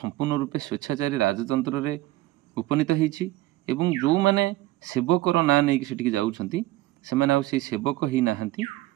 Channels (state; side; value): quieter; left; 17.2 dB